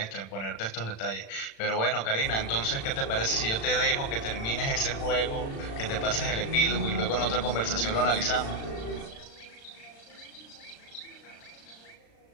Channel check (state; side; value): late; right; 36 ms